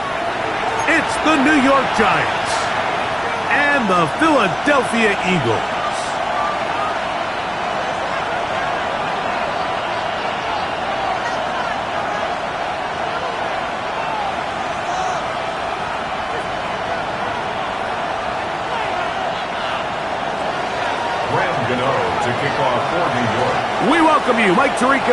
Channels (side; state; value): both; identical; correlation 1.00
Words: It's the New York Giants and the Philadelphia Eagles. To kick off for New York. We welcome you, Mike